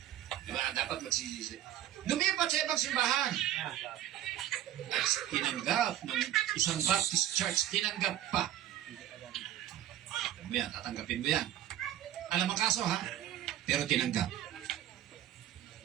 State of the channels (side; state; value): left; quieter; 12.4 dB